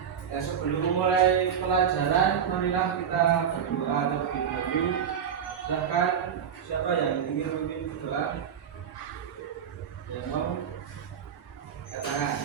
Ya, sebelum mulai pelajaran, marilah kita berdoa terlebih dahulu. Silahkan siapa yang ingin memimpin doa? Yang mau? Katakan.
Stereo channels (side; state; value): left; quieter; 8.0 dB